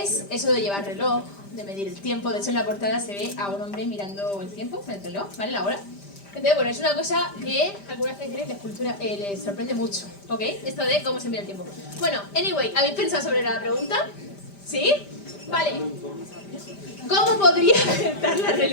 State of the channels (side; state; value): right; late; 5.0 ms